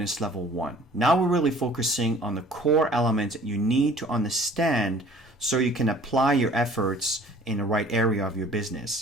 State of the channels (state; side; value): normal; both; correlation 0.52